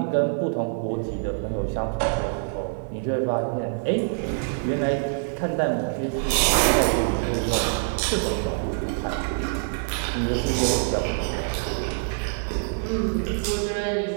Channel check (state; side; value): silent; left; digital silence